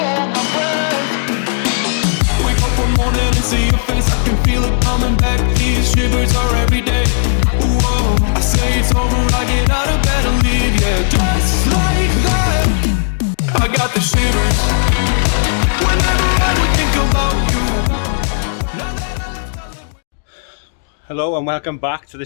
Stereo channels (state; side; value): silent; right; digital silence